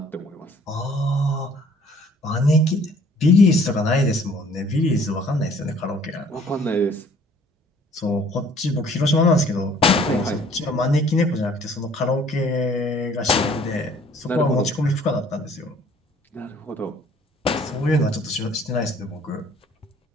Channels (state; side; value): normal; both; correlation 0.57